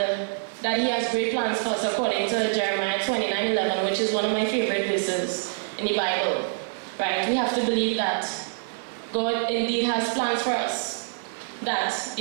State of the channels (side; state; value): left; silent; digital silence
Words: that he has great plans for us according to Jeremiah 29:11, which is one of my favorite verses in the Bible. Right? We have to believe that God indeed has plans for us. That